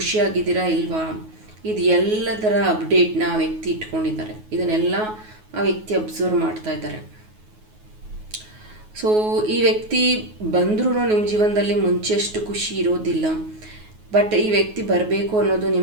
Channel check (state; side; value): late; left; 9.4 ms